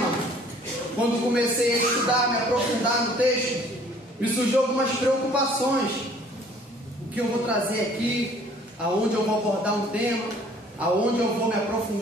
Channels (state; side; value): normal; both; correlation 0.55